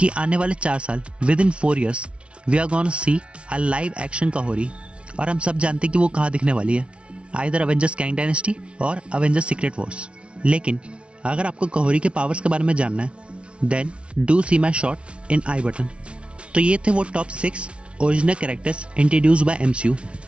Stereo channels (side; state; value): left; late; 0.059 ms